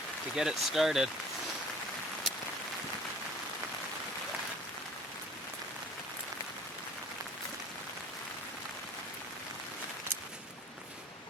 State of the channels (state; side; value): normal; both; correlation 0.48